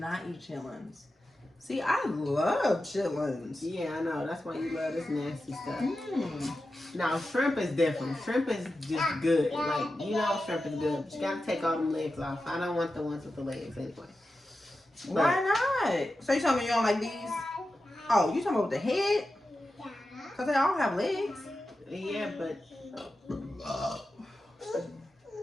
eat chitlins. See, I love chitlins. Yeah, I know. That's why you love this nasty stuff. Mm. Now, shrimp is different. Shrimp is just good. Like, you know shrimp is good, but you gotta take all them legs off. I don't want the ones with the legs anyway. Why not? So you telling me you don't like these? Oh, you talking about the head? Because they all have legs. Yeah, but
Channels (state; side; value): normal; both; correlation 0.92